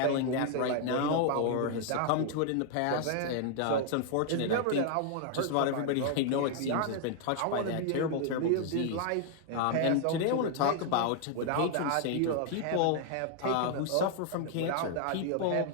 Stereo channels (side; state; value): both; different; correlation 0.00